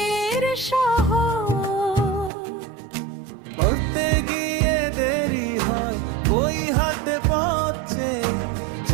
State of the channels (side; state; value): left; drops out; at 2.3 s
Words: শহর। পড়তে গিয়ে দেরি হয় বই হাতে পড়ছে,